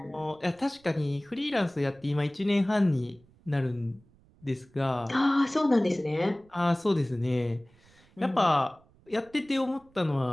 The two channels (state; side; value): noise; right; rumble, 29 dB below the sound